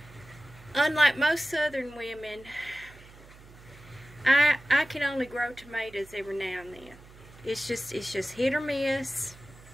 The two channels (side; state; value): right; noise; hum, 21 dB below the sound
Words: Unlike most southern women, I can only grow tomatoes every now and then. It's just hit or miss.